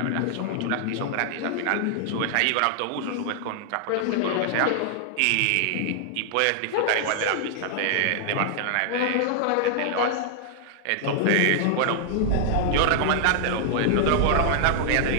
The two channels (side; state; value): both; different; correlation 0.00